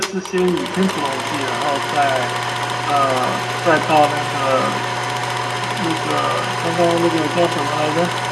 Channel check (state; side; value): identical; both; correlation 1.00